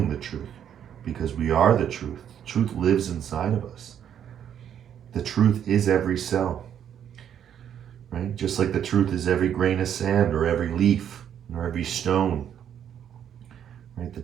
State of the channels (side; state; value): left; quieter; 9.3 dB